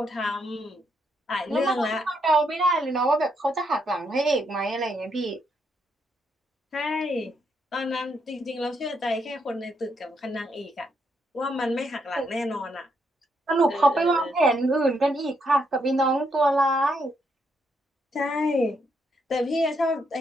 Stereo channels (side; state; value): both; normal; correlation 0.77